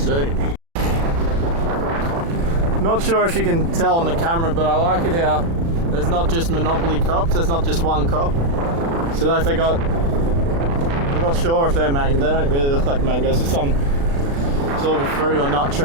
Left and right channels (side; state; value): left; late; 36 ms